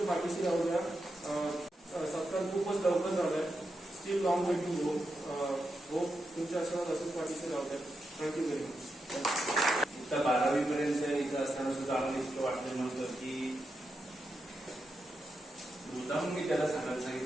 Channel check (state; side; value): normal; both; correlation 0.86